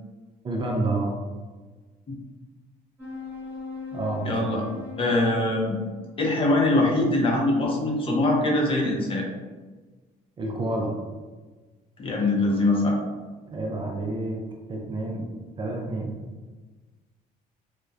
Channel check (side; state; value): both; normal; correlation 0.52